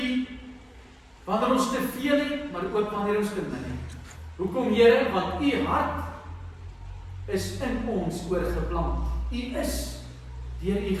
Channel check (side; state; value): both; identical; correlation 1.00